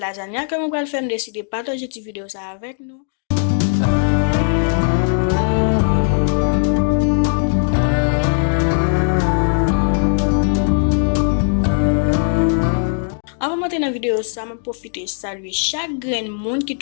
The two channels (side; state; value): right; silent; digital silence